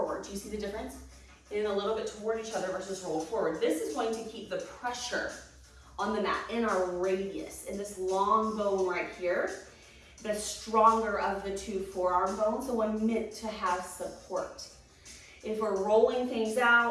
Do you see the difference? In a little bit toward each other versus roll forward. This is going to keep the pressure on the mat in our radius, in this long bone right here, the stronger of the two forearm bones, the one meant to have support. If we're rolling things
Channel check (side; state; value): both; identical; correlation 1.00